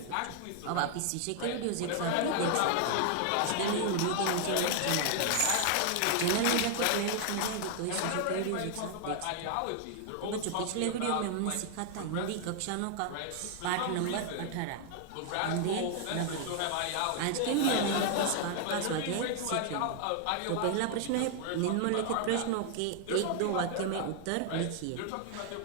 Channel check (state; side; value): different; both; correlation 0.00